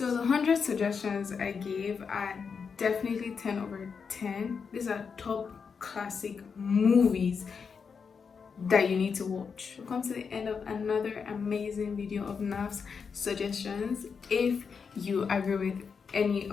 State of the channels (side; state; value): right; quieter; 5.9 dB